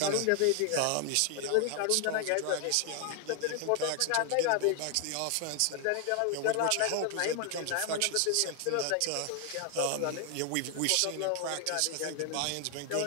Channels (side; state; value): both; different; correlation 0.00